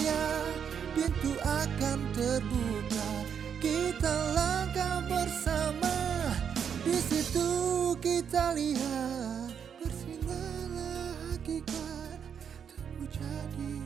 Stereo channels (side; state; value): left; quieter; 7.7 dB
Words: pintu akan terbuka, kita langkah bersama. Di situ kita lihat bersinarlah hakikat, tumbuh jadi